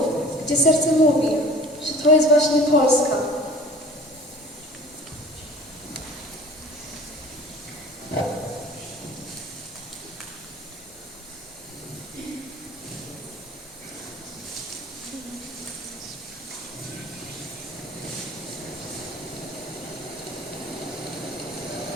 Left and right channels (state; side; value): normal; both; correlation 0.44